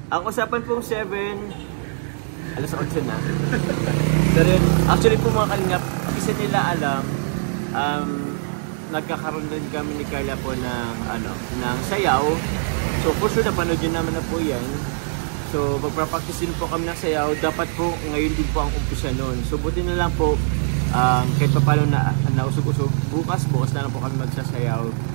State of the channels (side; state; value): left; silent; digital silence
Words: Ang usapan pong 7, alas 8 na. Pero yun, actually po mga Kalingap, kasi nila alam, nagkakaroon din kami ni Carla po ng sayaw. So for sure, napanood yun naman na po yan. So magpa-practice din po kami ng sayaw. Dapat po ngayon din po ang umpisa nun. So buti na lang po, kahit pa paano na nausog-usog, bukas na lang po kami magsasayaw.